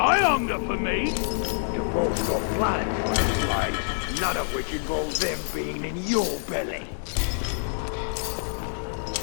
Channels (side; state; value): right; silent; digital silence